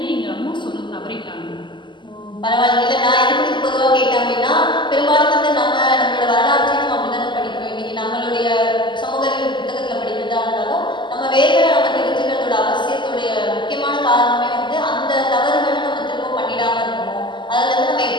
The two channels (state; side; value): late; right; 0.23 ms